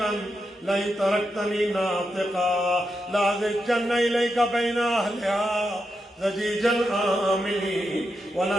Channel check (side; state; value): both; normal; correlation 0.86